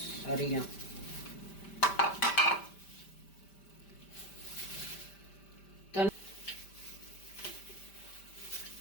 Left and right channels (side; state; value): right; late; 5.1 ms